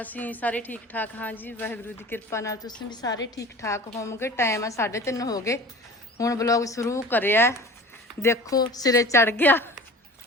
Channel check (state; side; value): normal; both; correlation 0.40